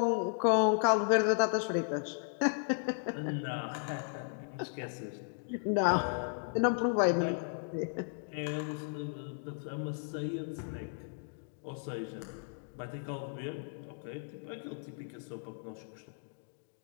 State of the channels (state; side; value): silent; right; digital silence